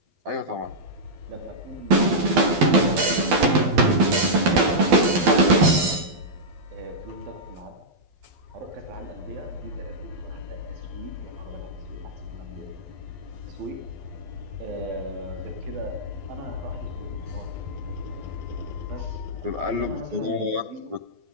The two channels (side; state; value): left; late; 12 ms